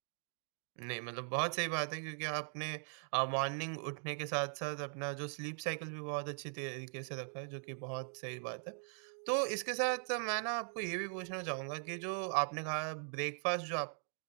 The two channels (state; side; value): silent; left; 51 dB below the other